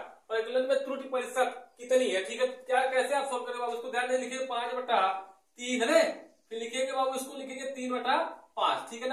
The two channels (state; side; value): identical; both; correlation 1.00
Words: परिकलन में त्रुटि प्रतिशत कितनी है, ठीक है। क्या कैसे आप सोल्व करेंगे बाबू, उसको ध्यान से लिखिए 5/3 है, फिर लिखेंगे बाबू इसको लिखेंगे 3/5, ठीक है